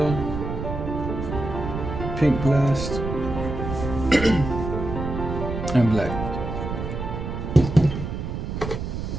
pink blast, and black.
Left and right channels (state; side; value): noise; right; rumble, 5 dB below the sound